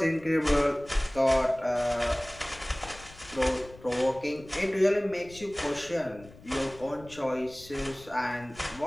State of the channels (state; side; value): noise; left; rumble, 20 dB below the sound